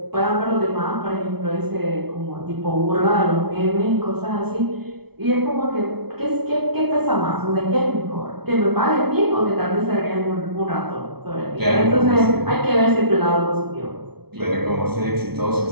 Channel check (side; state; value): left; late; 0.97 ms